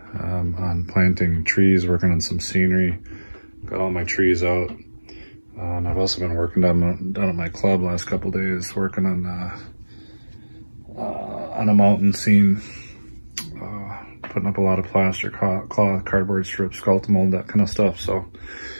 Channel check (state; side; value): inverted; both; correlation -1.00